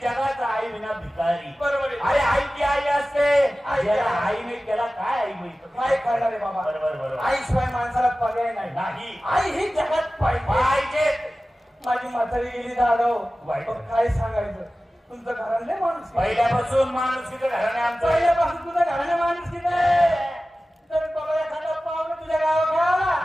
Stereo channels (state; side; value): normal; both; correlation 0.96